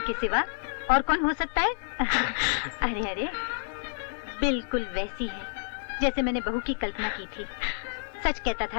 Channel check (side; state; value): right; silent; 59 dB below the other